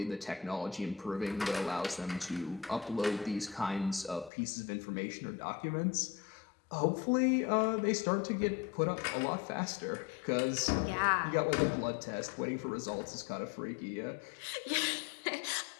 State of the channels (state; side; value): drops out; right; at 4.3 s